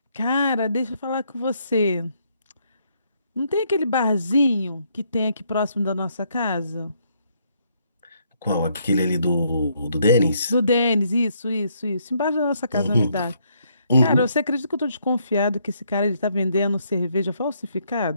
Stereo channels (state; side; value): inverted; both; correlation -0.72